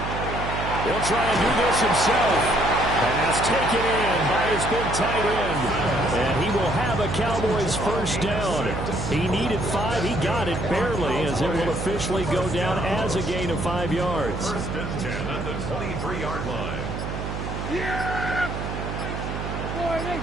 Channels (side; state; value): right; noise; hum, 5 dB below the sound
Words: He'll try and do this himself. Pass taken in by his big tight end. And he will have a Cowboys 1st down. He needed 5. He got it barely, as it will officially go down as a gain of 5 yards. 1st and 10 at the 23-yard line. Yeah!